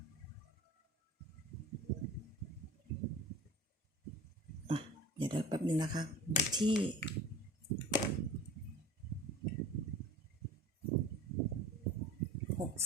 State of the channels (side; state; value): both; normal; correlation 0.39